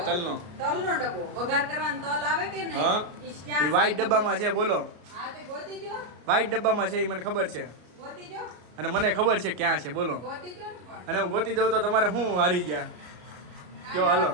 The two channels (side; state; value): left; late; 33 ms